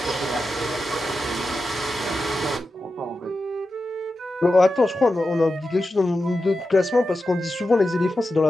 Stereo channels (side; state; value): both; normal; correlation 0.91